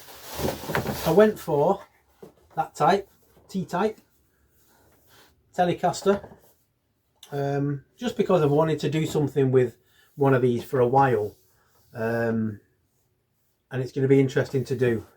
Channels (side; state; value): both; identical; correlation 1.00